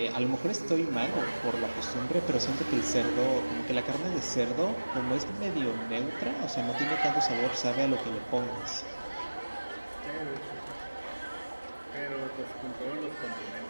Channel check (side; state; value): both; inverted; correlation -1.00